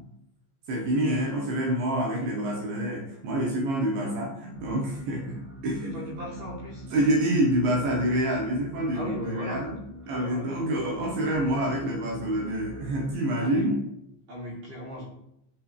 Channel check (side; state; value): left; late; 15 ms